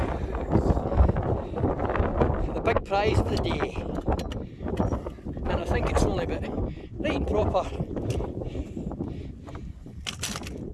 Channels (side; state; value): both; identical; correlation 1.00